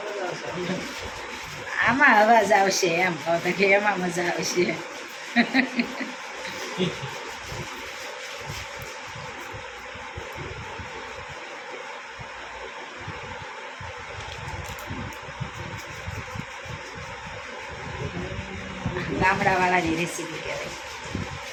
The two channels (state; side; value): identical; both; correlation 1.00